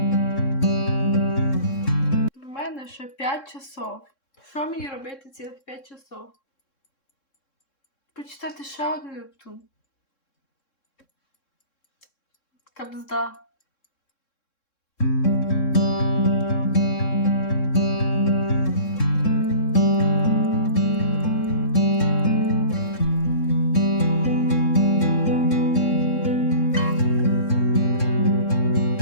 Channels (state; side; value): late; right; 3.7 ms